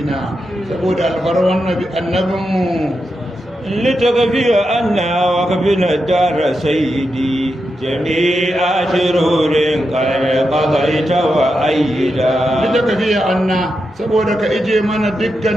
saboda alfarwan annabin mu لتكفي أنا وكفنا الدار سيدي جميع شرور قد قضيت وأيدا لتكفي أنا saboda ka ije mana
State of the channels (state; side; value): normal; both; correlation 0.87